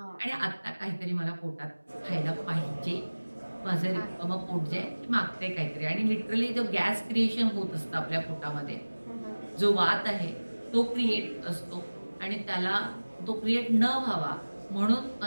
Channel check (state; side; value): inverted; both; correlation -1.00